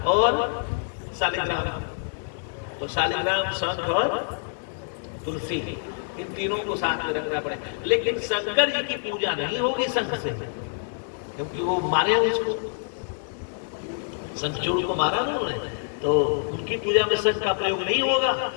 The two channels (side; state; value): right; silent; digital silence